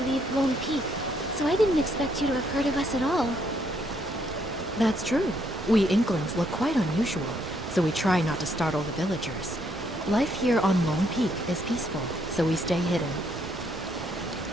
leave Lone Peak, so I didn't expect you to have heard of us at all. That's true. We Inklings look quite unusual, so we try not to startle the villagers. Life here on Lone Peak is peaceful, so we stay hidden.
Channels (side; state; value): both; normal; correlation 0.72